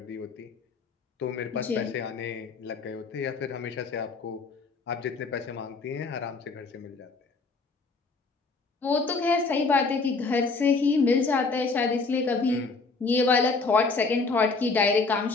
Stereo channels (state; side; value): quieter; right; 4.1 dB